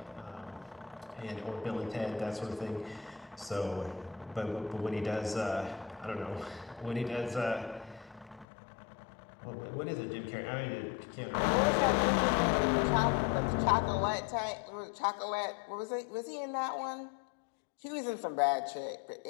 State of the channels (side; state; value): right; drops out; at 8.5 s